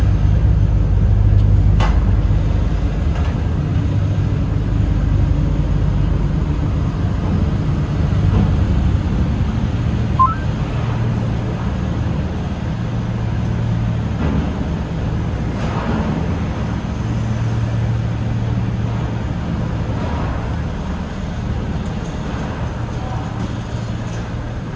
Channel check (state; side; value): identical; both; correlation 1.00